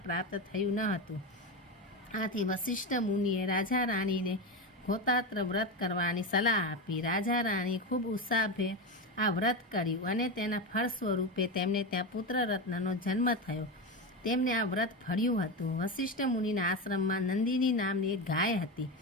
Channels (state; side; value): normal; both; correlation 0.17